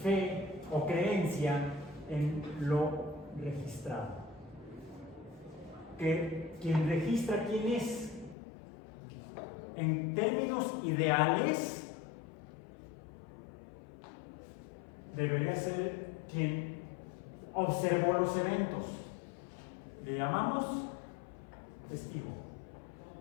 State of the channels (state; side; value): drops out; right; at 8.3 s